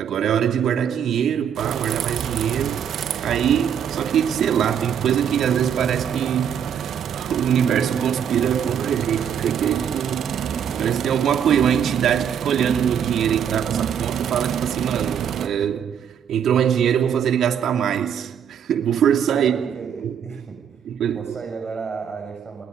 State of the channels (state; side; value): quieter; left; 8.4 dB